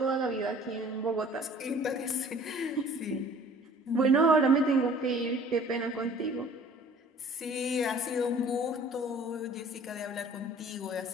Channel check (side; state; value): both; normal; correlation 0.50